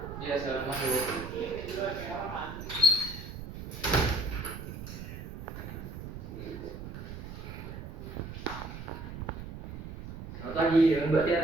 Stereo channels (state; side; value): noise; right; rumble, 9 dB below the sound